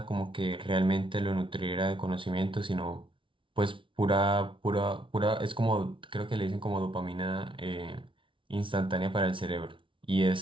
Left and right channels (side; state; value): left; late; 0.25 ms